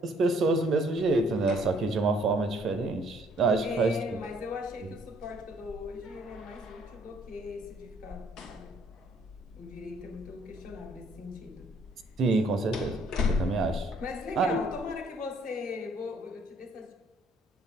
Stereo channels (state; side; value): normal; both; correlation 0.63